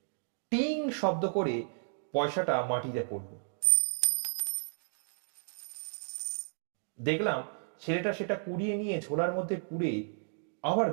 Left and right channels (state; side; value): silent; left; digital silence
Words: টিং শব্দ করে পয়সাটা মাটিতে পড়ল। দেখলাম ছেলেটা সেটা কুড়িয়ে নিয়ে ঝোলার মধ্যে পুরে আবার